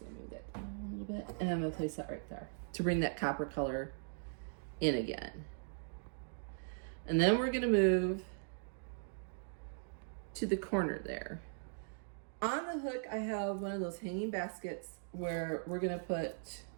gonna move that down a little bit, and I'm gonna place that right there to bring that copper color in again. And then we're gonna move to the corner there. On the hook, I have one of those hanging baskets where we're gonna put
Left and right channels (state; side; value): silent; left; digital silence